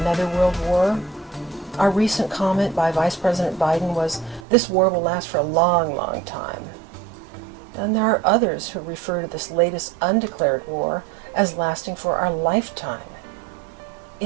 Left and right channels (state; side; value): drops out; left; at 4.4 s